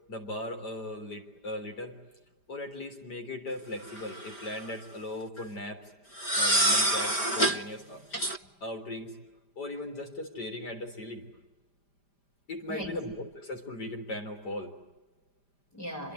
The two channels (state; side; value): late; right; 5.0 ms